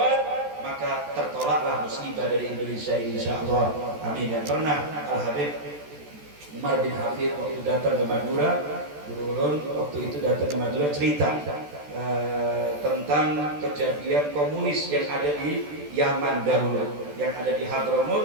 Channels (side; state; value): left; late; 14 ms